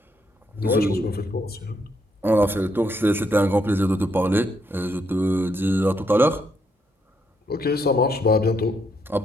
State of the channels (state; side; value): normal; both; correlation 0.76